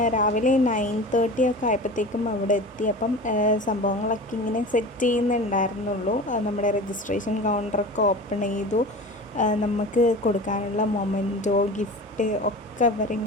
രാവിലെ 9:30 ഒക്കെ ആയപ്പോഴത്തേക്കും അവിടെ എത്തി. അപ്പം സംഭവങ്ങളൊക്കെ ഇങ്ങനെ സെറ്റ് ചെയ്യുന്നുണ്ടായിരുന്നുള്ളൂ. നമ്മുടെ രജിസ്ട്രേഷൻ കൗണ്ടറൊക്കെ ഓപ്പൺ ചെയ്തു. നമുക്ക് കൊടുക്കാനുള്ള മൊമെൻറ്റോ ഗിഫ്റ്റ് ഒക്കെ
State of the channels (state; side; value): normal; both; correlation 0.34